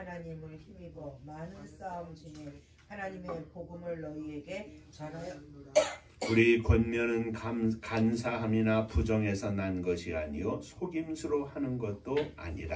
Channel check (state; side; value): identical; both; correlation 1.00